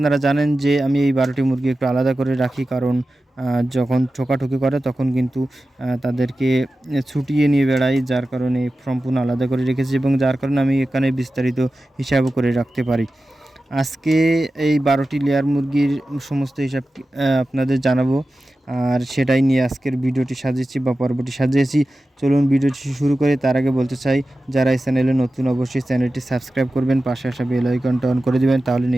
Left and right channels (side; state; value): both; normal; correlation 0.94